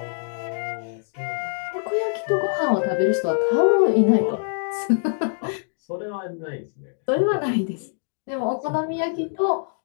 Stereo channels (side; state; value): right; silent; digital silence